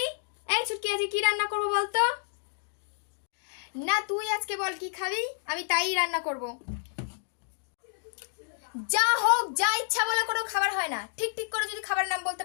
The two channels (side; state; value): right; silent; digital silence